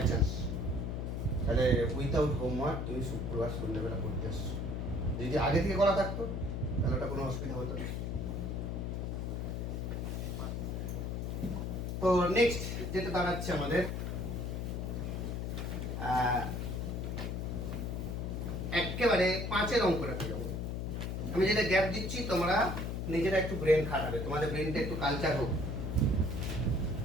চান্স, তাহলে উইথাউট হোমওয়ার্ক তুমি শুক্রবার সন্ধ্যাবেলা করতে আসছো। যদি আগে থেকে করা থাকতো তাহলে ওটা কোনো অসুবিধা হতো না। তো নেক্সট যেটা দাঁড়াচ্ছে আমাদের, একেবারে 5-এর অঙ্কটাতে যাবো। আমি যেটা গ্যাপ দিচ্ছি তোমরা নিজেরা একটু ব্রেন খাটাবে, তোমাদের ব্রেনটা একটু কালচার হোক।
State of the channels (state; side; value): noise; left; hum, 2 dB below the sound